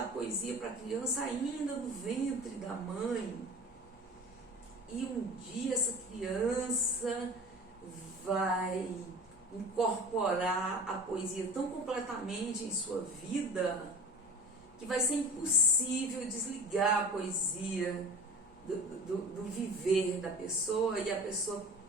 poesia para a criança ainda no ventre da mãe. E um dia essa criança vai incorporar a poesia tão completamente em sua vida que vai ser impossível desligar a poesia do viver da pessoa, e a pessoa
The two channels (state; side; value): normal; both; correlation 0.38